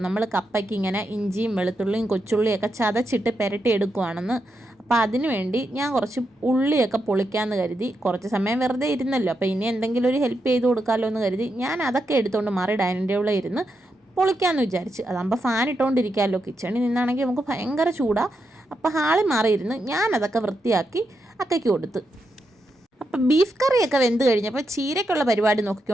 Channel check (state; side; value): normal; both; correlation 0.84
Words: നമ്മൾ കപ്പയ്ക്ക് ഇങ്ങനെ ഇഞ്ചിയും വെളുത്തുള്ളിയും കൊച്ചുള്ളിയൊക്കെ ചതച്ചിട്ട് പുരട്ടി എടുക്കുവാണെന്ന്. അപ്പോൾ അതിന് വേണ്ടി ഞാൻ കുറച്ച് ഉള്ളിയൊക്കെ പൊളിക്കാമെന്ന് കരുതി. കുറച്ച് സമയം വെറുതെ ഇരുന്നല്ലോ, അപ്പോൾ ഇനി എന്തെങ്കിലും ഒരു ഹെൽപ്പ് ചെയ്ത് കൊടുക്കാമല്ലോ എന്ന് കരുതി ഞാൻ അതൊക്കെ എടുത്തുകൊണ്ട് മാറി ഡൈനിങ് ടേബിളിൽ ഇരുന്ന് പൊളിക്കാമെന്ന് വിചാരിച്ച്. അതാകുമ്പോൾ ഫാൻ ഇട്ടുകൊണ്ടിരിക്കാമല്ലോ. കിച്ചണിൽ നിന്നാണെങ്കിൽ നമുക്ക് ഭയങ്കര ചൂടാണ്. അപ്പോൾ ഹാളിൽ മാറിയിരുന്ന് ഞാനതൊക്കെ വൃത്തിയാക്കി അക്കയ്ക്ക് കൊടുത്ത്. അപ്പം ബീഫ് കറിയൊക്കെ വെന്ത് കഴിഞ്ഞപ്പോൾ ചീരയ്ക്കുള്ള പരിപാടി